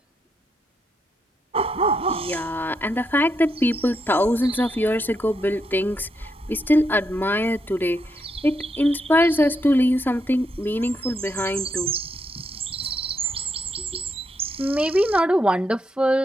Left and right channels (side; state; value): both; normal; correlation 0.80